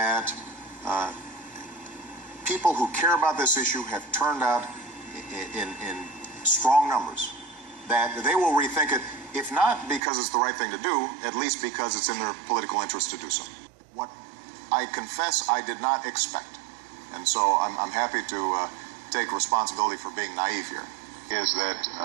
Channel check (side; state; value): left; drops out; at 10.0 s